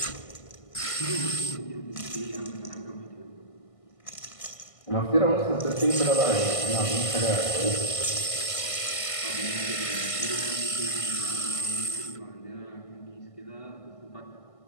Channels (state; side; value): late; right; 1.5 ms